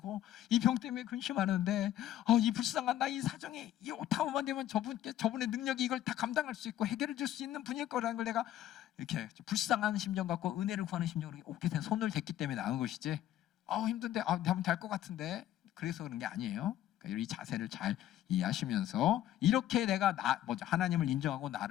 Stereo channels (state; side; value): quieter; right; 12.5 dB